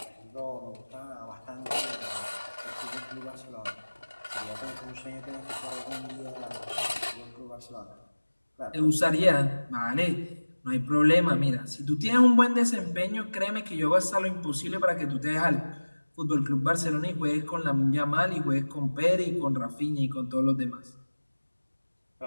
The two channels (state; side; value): inverted; both; correlation -1.00